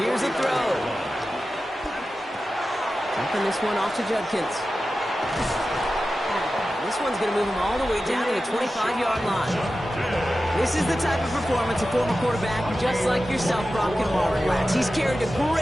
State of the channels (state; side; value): normal; both; correlation 0.93